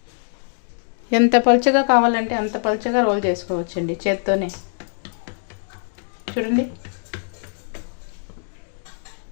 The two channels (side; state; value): right; silent; digital silence